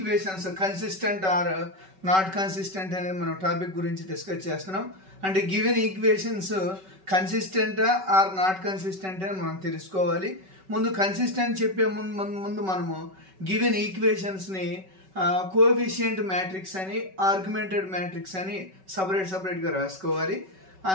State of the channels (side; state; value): left; late; 5.3 ms